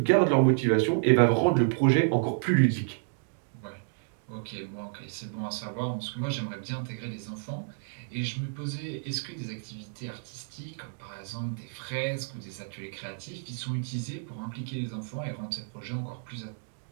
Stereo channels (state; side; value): silent; left; digital silence